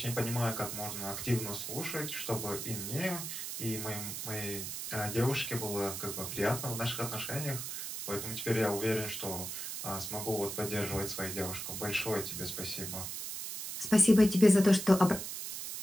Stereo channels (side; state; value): right; noise; hiss, 6 dB below the sound